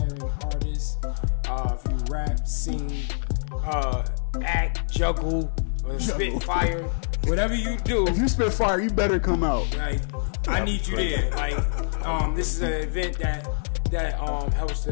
artist, if you rap, sing, act, juggle, or spit fire, whatever you do. If you spit fire, you better come out. Like, I need you there. Like, this is an event that helps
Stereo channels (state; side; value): silent; right; digital silence